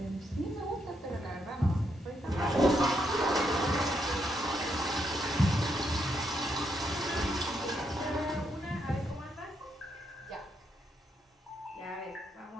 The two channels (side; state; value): both; normal; correlation 0.78